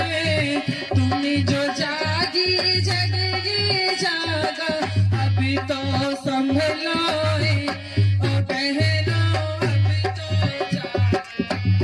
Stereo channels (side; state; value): both; identical; correlation 1.00